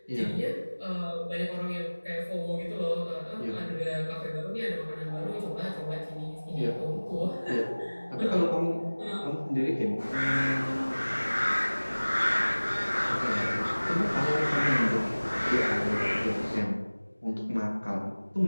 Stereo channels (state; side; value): inverted; both; correlation -1.00